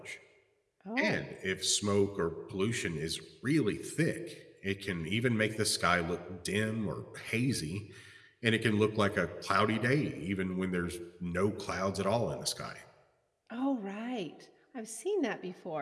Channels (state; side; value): identical; both; correlation 1.00